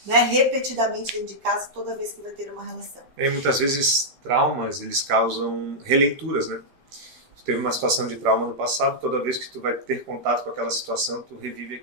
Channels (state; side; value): late; left; 14 ms